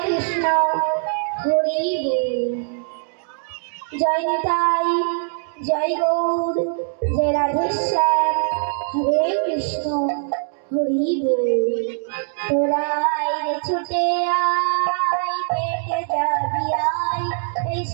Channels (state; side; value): silent; left; digital silence